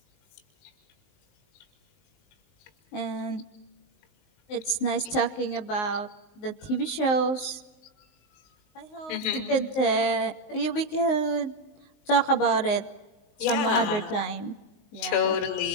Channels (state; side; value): late; right; 19 ms